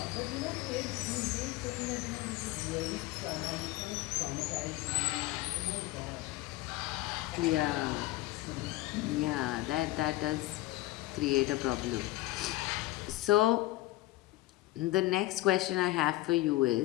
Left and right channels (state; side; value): quieter; right; 17.6 dB